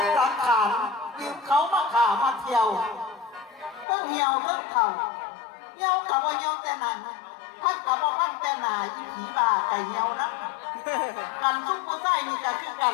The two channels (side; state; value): right; drops out; at 3.9 s